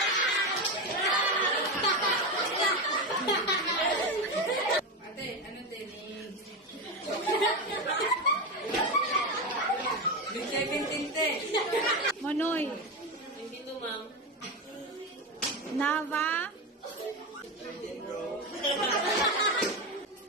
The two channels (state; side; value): normal; both; correlation 0.16